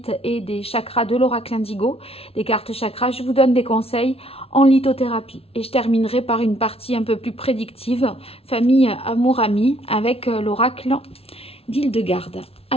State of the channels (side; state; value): right; late; 0.28 ms